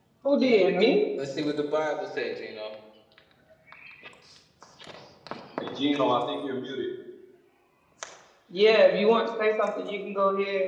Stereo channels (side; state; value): both; identical; correlation 1.00